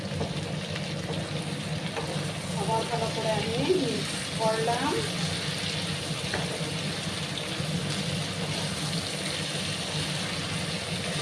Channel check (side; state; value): both; identical; correlation 1.00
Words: আবার ভালো করে আমি মিক্স করলাম।